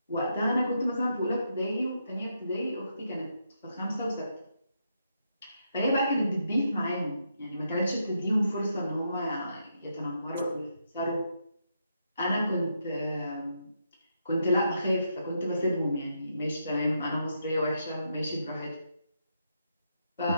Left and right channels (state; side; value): inverted; both; correlation -0.80